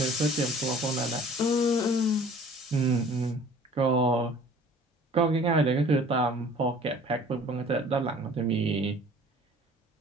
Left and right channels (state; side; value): normal; both; correlation 0.50